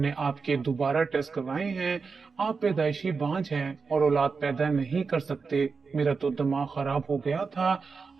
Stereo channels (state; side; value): quieter; left; 4.9 dB